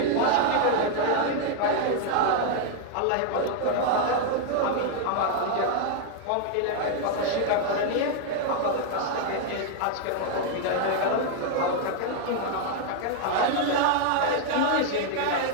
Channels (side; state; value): both; different; correlation 0.00